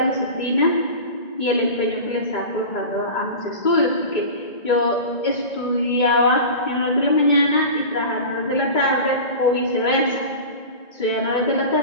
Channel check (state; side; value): late; right; 2.2 ms